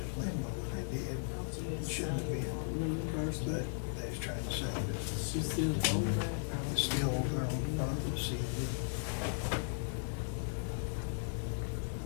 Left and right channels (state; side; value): silent; right; digital silence